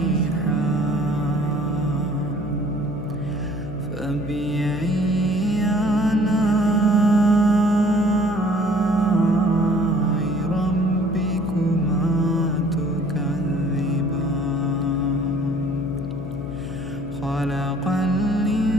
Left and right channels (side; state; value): left; noise; hum, 10 dB below the sound